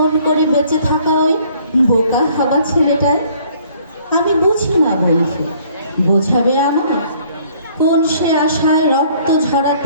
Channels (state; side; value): inverted; both; correlation -0.59